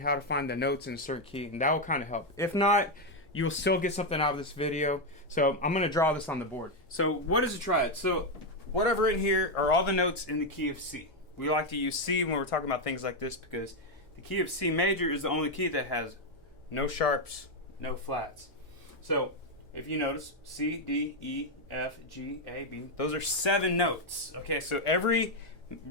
how to find the notes in a certain key, and that will kind of help. If not, you'll still get something out of this video. So I'm going to draw this on the board. So what is a triad? So what I've written here are all the notes in the key of C. We like to use C when we're talking about things like this because the key of C major is the only key that has no sharps, no flats. So if you notice, C, D, E, F, G, A, B, those are 7 notes. Okay, so every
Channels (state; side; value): normal; both; correlation 0.04